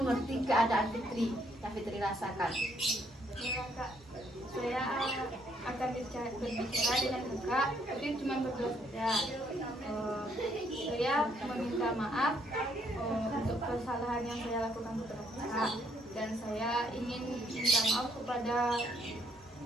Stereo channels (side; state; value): both; normal; correlation 0.70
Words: keadaan Fitri yang Fitri rasakan. Ya, Kak, saya akan berbicara dengan kakak, tapi cuma berdua saja. Saya meminta maaf untuk kesalahan yang saya lakukan kepada kakak, dan saya ingin minta maaf kepada